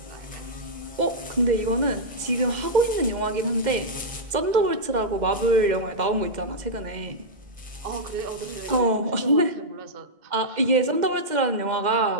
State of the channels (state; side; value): late; left; 2.1 ms